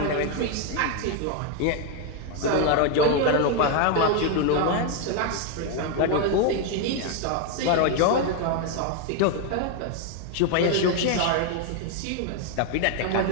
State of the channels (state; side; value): different; both; correlation 0.01